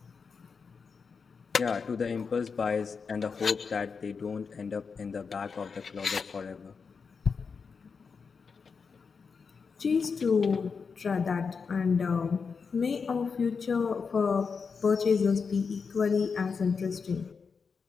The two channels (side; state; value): right; quieter; 5.4 dB